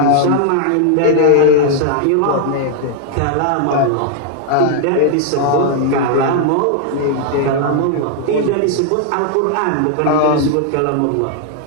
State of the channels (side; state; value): both; different; correlation 0.00